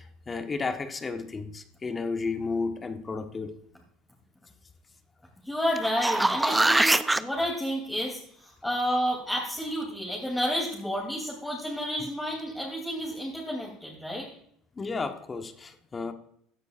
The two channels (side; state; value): both; normal; correlation 0.88